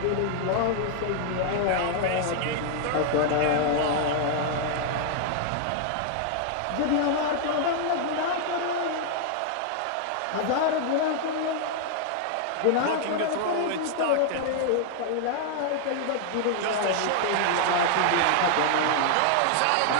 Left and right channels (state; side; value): different; both; correlation 0.00